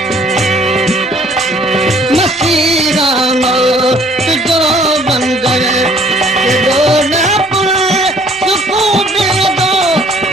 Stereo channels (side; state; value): both; normal; correlation 0.58